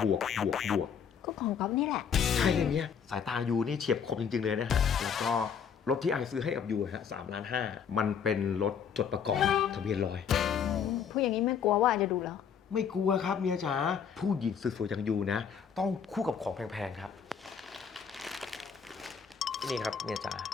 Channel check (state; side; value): quieter; right; 7.2 dB